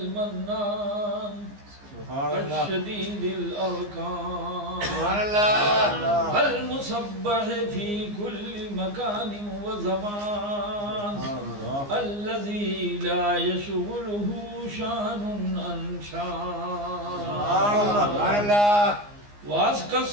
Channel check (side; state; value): left; late; 15 ms